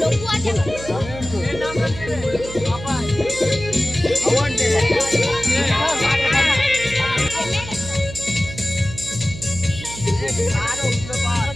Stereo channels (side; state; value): right; noise; hum, 12 dB below the sound